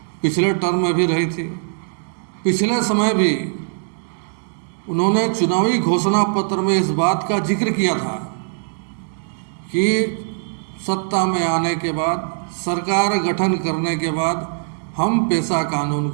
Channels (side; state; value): left; silent; 64 dB below the other